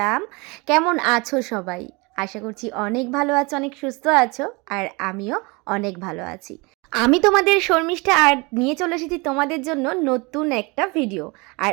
কেমন আছো সবাই? আশা করছি অনেক ভালো আছো, অনেক সুস্থ আছো, আর আমিও অনেক ভালো আছি। আমি তোমাদের শর্মিষ্ঠা আর নিয়ে চলে এসেছি তোমাদের জন্য নতুন একটা ভিডিও। আর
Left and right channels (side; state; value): left; quieter; 27.3 dB